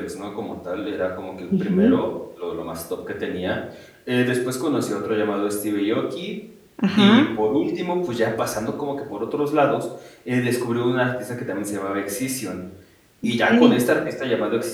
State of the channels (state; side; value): identical; both; correlation 1.00